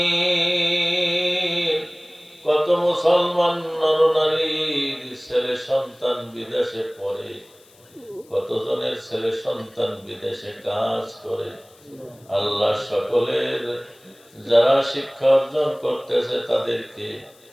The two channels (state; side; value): noise; left; hiss, 28 dB below the sound